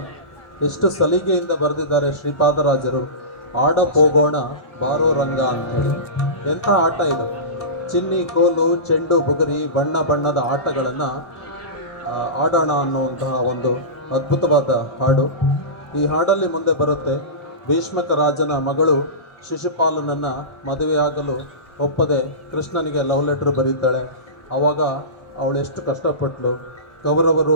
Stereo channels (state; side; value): late; right; 1.7 ms